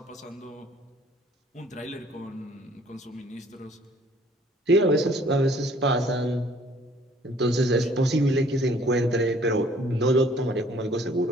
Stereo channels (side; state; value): both; normal; correlation 0.57